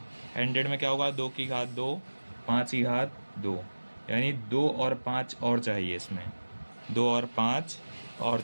100 में क्या होगा? 2 की घात 2, 5 की घात 2, यानी 2 और 5 और चाहिए इसमें, 2 और 5 और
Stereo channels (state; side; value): inverted; both; correlation -1.00